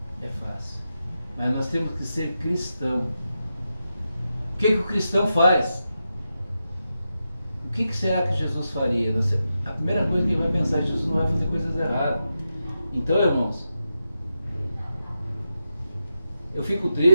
é fácil, mas nós temos que ser cristão. O que o cristão faz? O que será que Jesus faria? A primeira coisa que ele vai pensar é que Jesus não vai fazer coisas erradas. Então, irmãos, eu fico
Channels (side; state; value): both; inverted; correlation -0.88